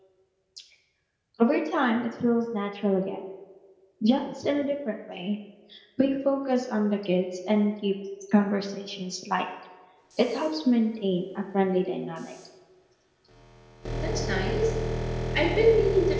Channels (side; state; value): both; identical; correlation 1.00